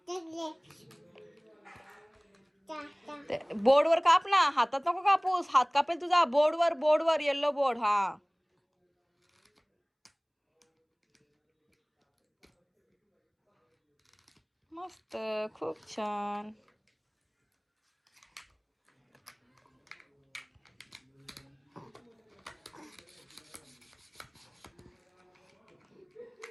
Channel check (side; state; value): both; identical; correlation 1.00